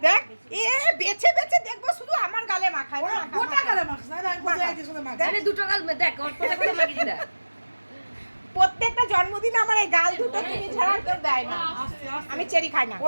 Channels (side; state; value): both; inverted; correlation -1.00